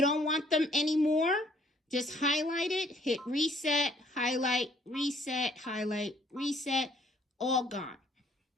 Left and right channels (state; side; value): normal; both; correlation 0.62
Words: don't want them anymore. Just highlight it, hit reset, highlight, reset, all gone,